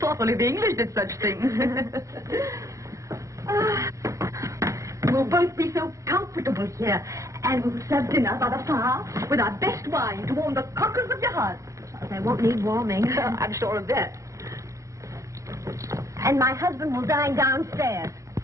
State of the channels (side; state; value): left; late; 0.15 ms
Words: only the English did such things. We'll both be so comfortable here, and we'll serve dinner by the fire with our best wine to warm the cockles of your heart. They won't need warming. I'm sure of that. And my husband will dine downstairs.